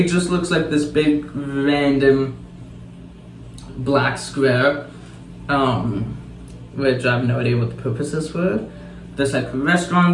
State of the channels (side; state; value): both; identical; correlation 1.00